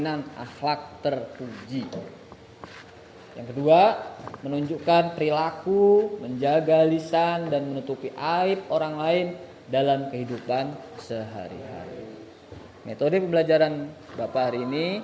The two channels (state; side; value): identical; both; correlation 1.00